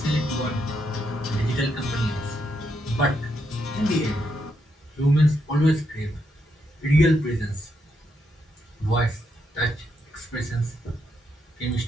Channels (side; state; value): both; normal; correlation 0.80